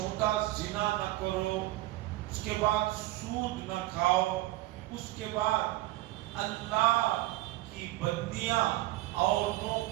زنا نہ کرو، اس کے بعد سود نہ کھاؤ، اس کے بعد اللہ کی بندیاں عورتوں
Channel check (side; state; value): left; quieter; 17.7 dB